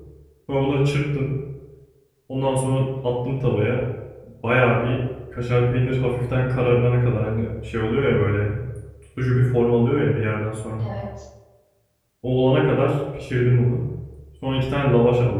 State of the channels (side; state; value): both; identical; correlation 1.00